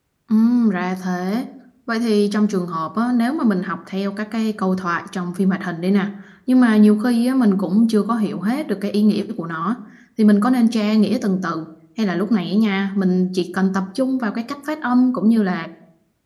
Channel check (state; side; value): identical; both; correlation 1.00